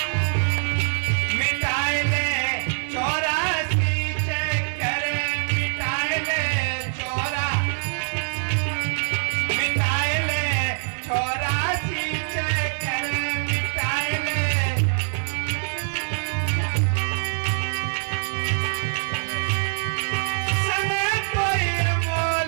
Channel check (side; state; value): left; silent; 60 dB below the other